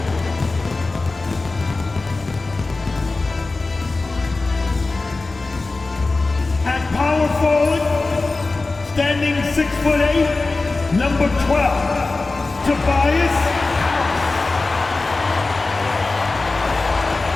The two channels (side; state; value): right; quieter; 3.5 dB